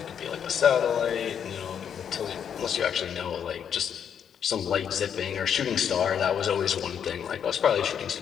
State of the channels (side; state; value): right; quieter; 8.2 dB